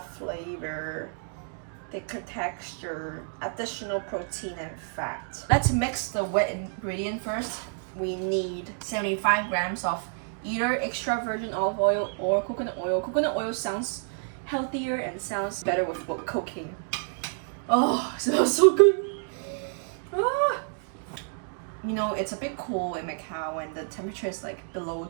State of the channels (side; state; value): left; silent; 59 dB below the other